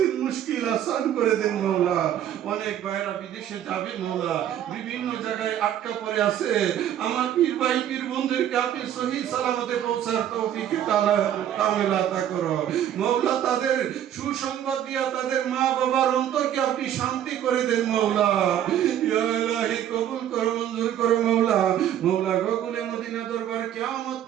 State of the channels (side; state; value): left; quieter; 10.7 dB